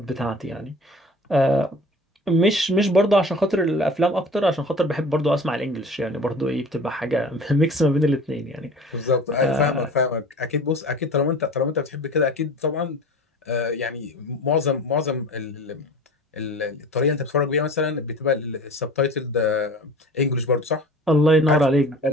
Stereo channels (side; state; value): both; normal; correlation 0.41